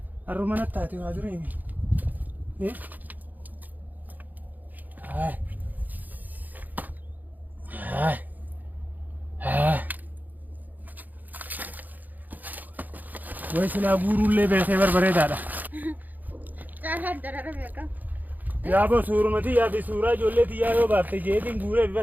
harruma nattaate waa dureemi. Way silaa guuruullee beekee barbareedaadha. Jaalaan darara beeka. Yaa boo suurumati yaa fi suuraa ijoolleeti yaa yoo baafte jeetiin guuree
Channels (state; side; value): late; left; 0.083 ms